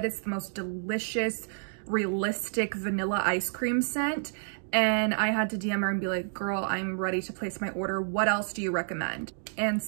it's the most delicious, realistic vanilla ice cream scent. And I had to DM her and be like, girl, I'm ready to place my order. What else do you recommend? And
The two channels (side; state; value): left; silent; digital silence